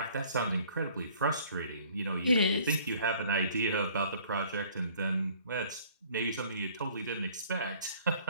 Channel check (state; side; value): inverted; both; correlation -0.55